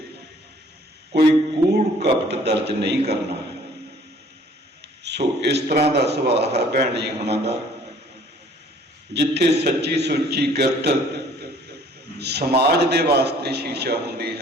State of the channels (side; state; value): both; normal; correlation 0.56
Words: ਕੋਈ ਕੂੜ ਕਪਟ ਦਰਜ ਨਹੀਂ ਕਰਨਾ। ਸੋ ਇਸ ਤਰ੍ਹਾਂ ਦਾ ਸੁਭਾਅ ਹੈ ਭੈਣ ਜੀ ਹੁਣਾਂ ਦਾ, ਜਿੱਥੇ ਸੱਚੀ ਸੁੱਚੀ ਕਿਰਤ ਸਮਾਜ ਦੇ ਵਾਸਤੇ ਸ਼ੀਸ਼ਾ ਹੁੰਦੀ